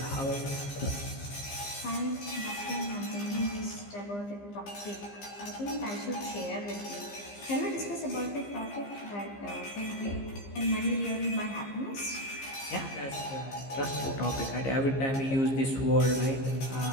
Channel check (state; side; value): late; right; 15 ms